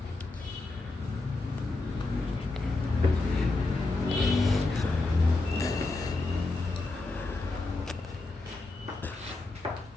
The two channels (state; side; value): quieter; right; 3.3 dB